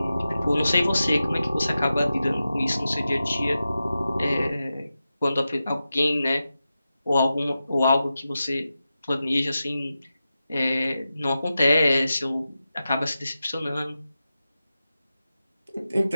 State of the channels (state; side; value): inverted; both; correlation -0.92